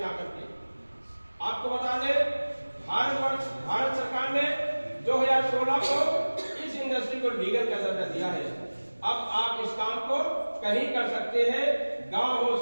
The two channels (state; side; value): inverted; both; correlation -1.00